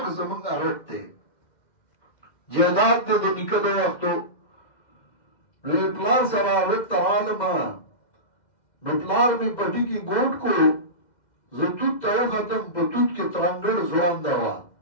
زمونږ رټ دی جیدات د نیکه د وختو نو پلار سره رټ ترالم نو پلار می پټی کې ګوټ کو زه توت ته ختم په توت کې ترنګړ ځوان دا وا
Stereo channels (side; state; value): right; late; 2.1 ms